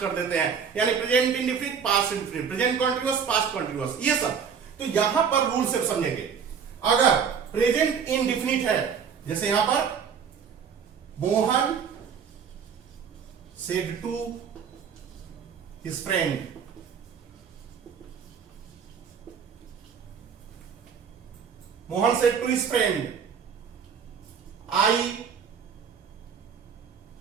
देते हैं, यानी present indefinite past indefinite, present continuous past continuous, ये सब। तो यहां पर रूल से समझेंगे। अगर प्रेजेंट इंडेफिनिट है, जैसे यहां पर Mohan said to his friend, Mohan said to his friend, I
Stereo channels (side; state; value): left; quieter; 6.9 dB